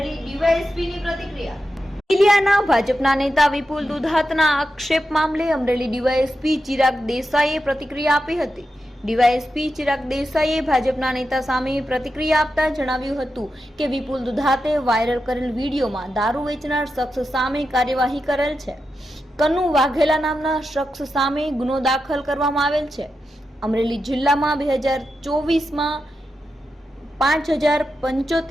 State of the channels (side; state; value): both; normal; correlation 0.88